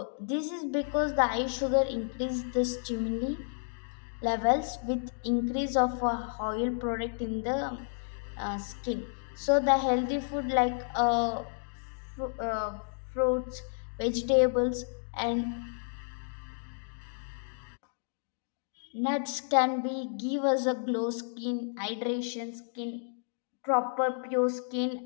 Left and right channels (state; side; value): silent; right; digital silence